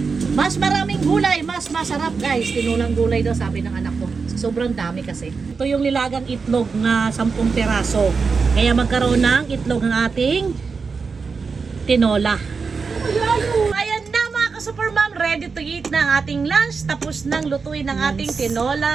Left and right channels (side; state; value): left; quieter; 5.0 dB